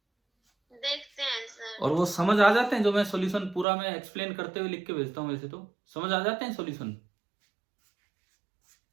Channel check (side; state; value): left; drops out; at 3.7 s